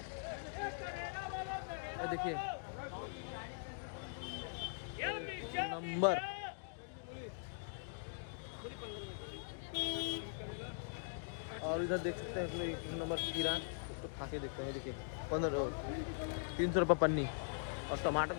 देखिए नंबर। और इधर देख सकते हैं 1 नंबर खीरा, तो खा के देखते हैं। देखिए 300 रुपये पन्नी। और टमाटर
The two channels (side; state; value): right; silent; digital silence